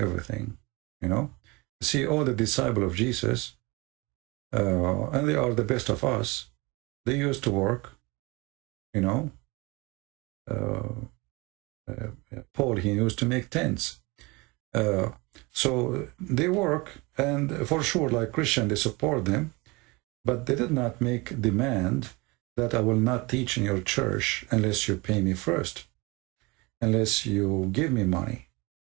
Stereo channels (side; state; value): left; quieter; 25.2 dB